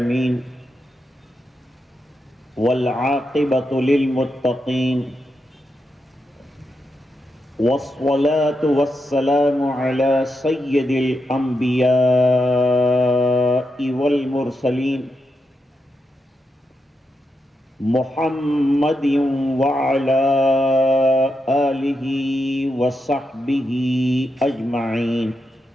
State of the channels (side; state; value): both; normal; correlation 0.85